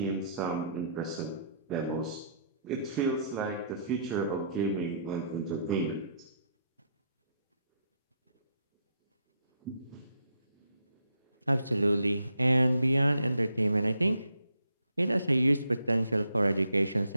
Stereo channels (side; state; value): both; inverted; correlation -0.72